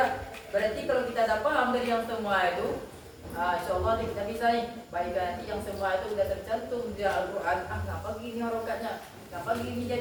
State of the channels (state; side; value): identical; both; correlation 1.00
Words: Berarti kalau kita dah paham dari yang semua itu, insyaAllah kita bisa nih. Baik nanti yang semua itu sudah tercantum di Al-Quran. Ngapa gini harokatnya? Ngapa gini